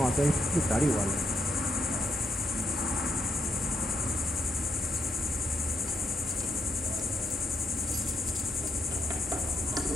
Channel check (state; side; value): normal; both; correlation 0.79